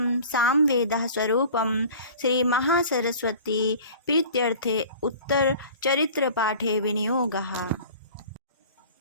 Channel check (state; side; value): inverted; both; correlation -0.43